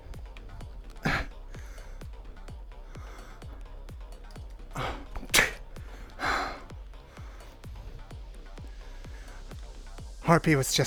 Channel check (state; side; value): identical; both; correlation 1.00